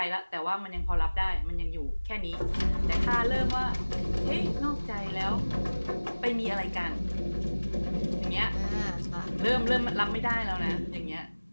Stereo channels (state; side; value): inverted; both; correlation -1.00